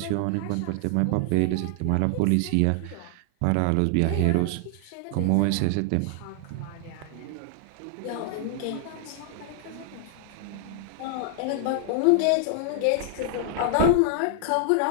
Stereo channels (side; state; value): both; different; correlation 0.00